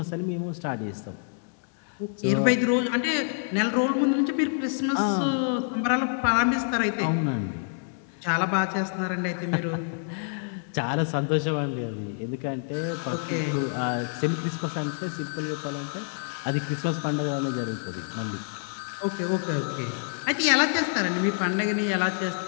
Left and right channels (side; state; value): right; silent; digital silence